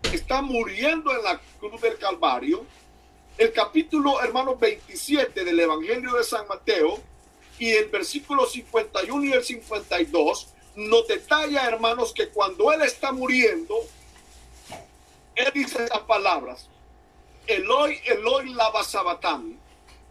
está muriendo en la cruz del Calvario, el capítulo, hermanos, 27 del Evangelio de San Mateo y el versículo 51 y el 52 nos detalla, hermanos, que cuando él está muriendo, él dice esas palabras: Eloi, Eloi, lama sabacthani.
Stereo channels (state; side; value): identical; both; correlation 1.00